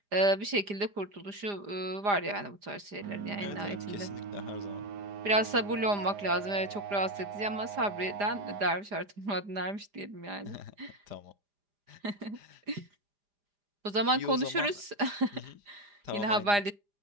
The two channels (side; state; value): left; late; 4.9 ms